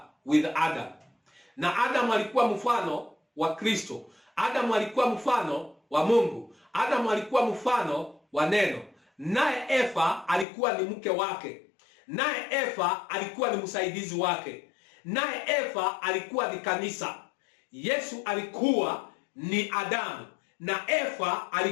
with Adam. Na Adam alikuwa mfano wa Kristo. Adam alikuwa mfano wa Mungu. Adam alikuwa mfano wa neno. Naye Eva alikuwa ni mke wake. Naye Eva alikuwa ni msaidizi wake. Naye Eva alikuwa ni kanisa. Yesu alikuwa ni Adamu na Eva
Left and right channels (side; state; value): right; drops out; at 10.5 s